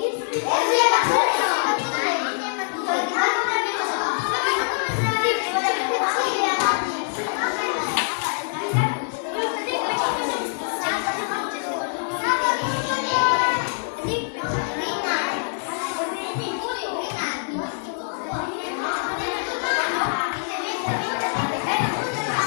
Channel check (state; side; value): silent; right; digital silence